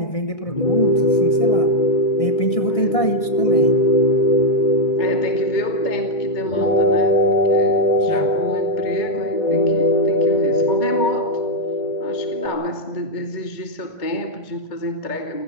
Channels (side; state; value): right; late; 1.6 ms